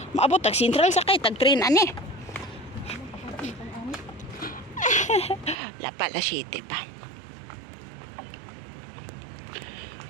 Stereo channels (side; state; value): left; drops out; at 5.6 s